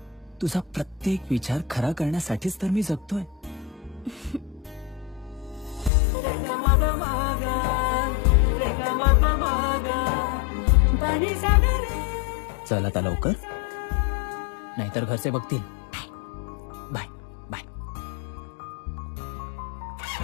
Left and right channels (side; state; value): right; drops out; at 5.9 s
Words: तुझा प्रत्येक विचार खरा करण्यासाठीच तर मी जगतोय. चल आता लवकर, नाहीतर घरचे बघतील. Bye bye.